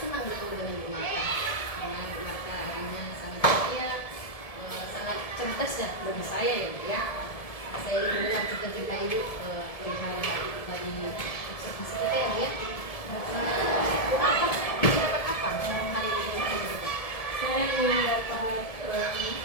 senang bertemu dengan Bu Marta. Karena Bu Marta orangnya sangat ceria, sangat cerdas ya bagi saya ya Bu ya. Saya ingin mendengar cerita-cerita Ibu perihal dari observasi kita ya Bu ya. Bu Marta dapat apa hari ini? Saya ingin dapat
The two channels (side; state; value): right; late; 1.7 ms